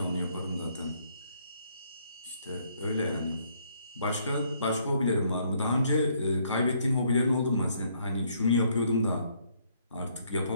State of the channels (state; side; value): inverted; both; correlation -0.68